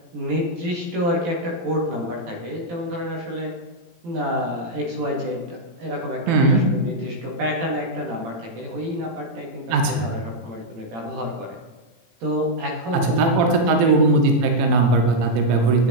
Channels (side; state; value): left; late; 18 ms